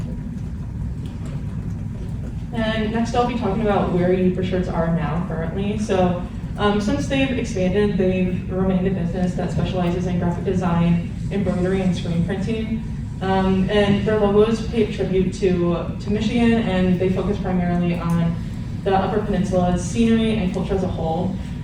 And next I'll be talking about where Uber Shirts are now currently. So since they've expanded, they've remained a business that specializes in graphic design, embroidery, and screen printing. And their logos pay tribute to Michigan, and they focus primarily on the Upper Peninsula's scenery and culture as a whole.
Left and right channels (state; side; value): identical; both; correlation 1.00